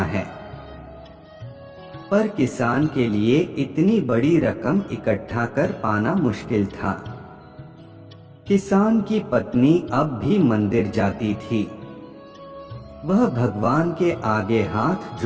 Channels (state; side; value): identical; both; correlation 1.00